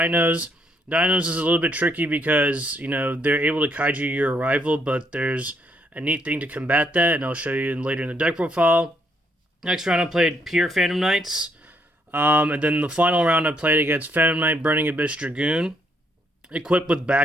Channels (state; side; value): normal; both; correlation 0.72